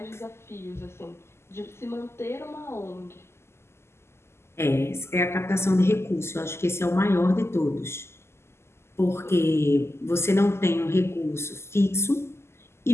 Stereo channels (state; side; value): late; right; 0.12 ms